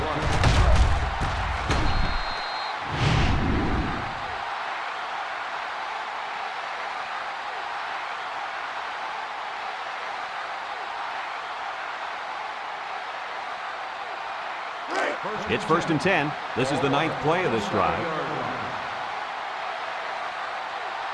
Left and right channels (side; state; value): both; identical; correlation 1.00